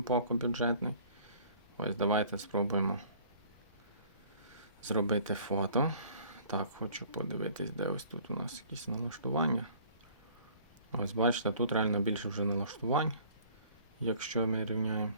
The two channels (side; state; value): both; inverted; correlation -0.53